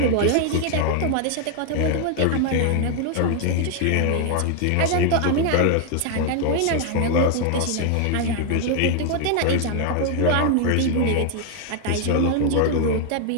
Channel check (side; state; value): both; different; correlation 0.00